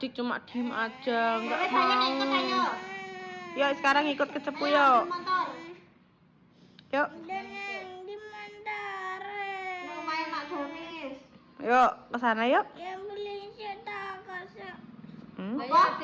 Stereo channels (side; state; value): both; identical; correlation 1.00